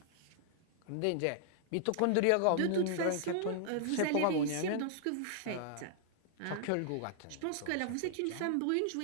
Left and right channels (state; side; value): different; both; correlation -0.01